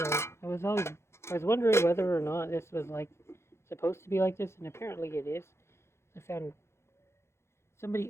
I was wondering whether or not this was like supposed to be like this, and apparently it is. I found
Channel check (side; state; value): right; late; 0.13 ms